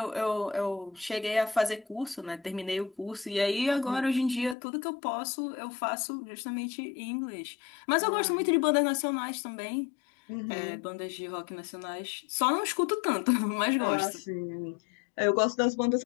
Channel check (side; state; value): right; drops out; at 4.5 s